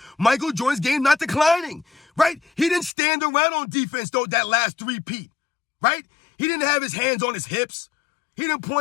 Michael Jordan's game not declining, right? He didn't stand around on defense, though, that last three-peat, right? He didn't have his hands on his hips. He didn't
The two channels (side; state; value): right; drops out; at 2.9 s